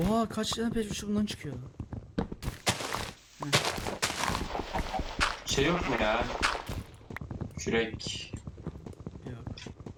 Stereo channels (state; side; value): identical; both; correlation 1.00